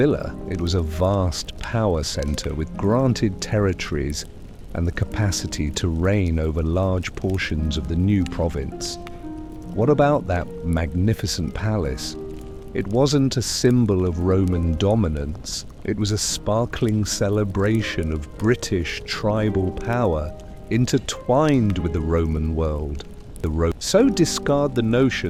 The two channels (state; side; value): identical; both; correlation 1.00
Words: it was a vast power centre with granted territories and the capacity to reign over large portions of the new province. What about that magnificent palace? It wasn't a symbol of Roman dominance, it was a sparkling celebration of British tribal power intertwined with the Roman world. So discard the